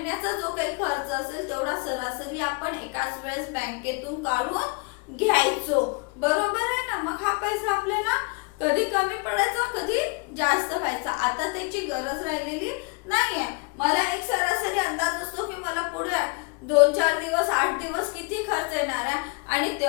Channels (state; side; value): quieter; right; 32.0 dB